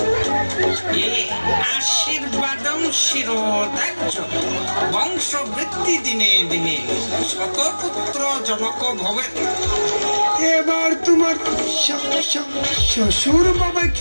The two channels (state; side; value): inverted; both; correlation -1.00